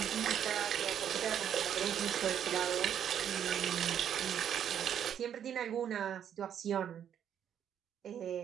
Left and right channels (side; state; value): left; quieter; 9.3 dB